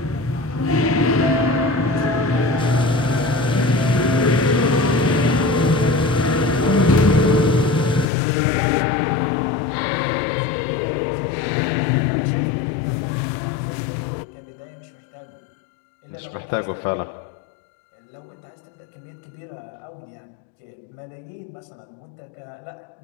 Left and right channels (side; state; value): right; drops out; at 8.1 s